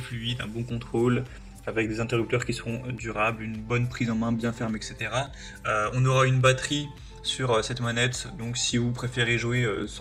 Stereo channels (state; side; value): identical; both; correlation 1.00